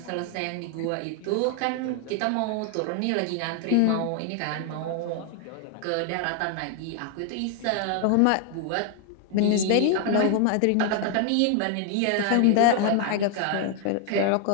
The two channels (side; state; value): both; different; correlation 0.00